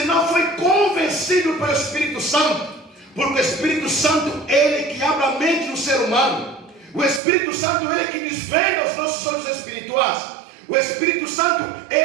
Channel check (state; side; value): drops out; left; at 7.2 s